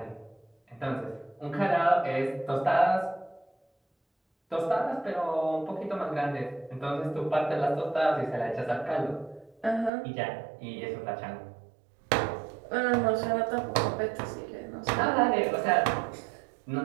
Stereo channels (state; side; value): drops out; left; at 9.9 s